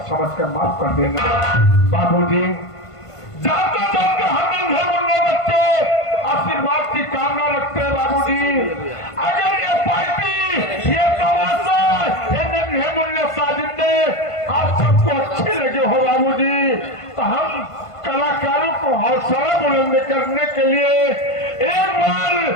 समझ कर माफ कर देना बाबूजी। जाते जाते हम नन्हे मुन्ने बच्चे आशीर्वाद की कामना रखते हैं बाबूजी। अगर ये पार्टी ये तमाशा ये नन्हे मुन्ने साजिंदे आप सबको अच्छे लगे हो बाबूजी तो हम कलाकारों को हौसला बुलंद करने के लिए एक बार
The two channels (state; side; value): late; right; 1.5 ms